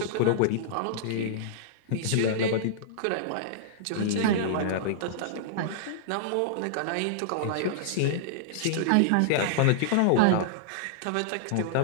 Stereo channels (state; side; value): different; both; correlation -0.02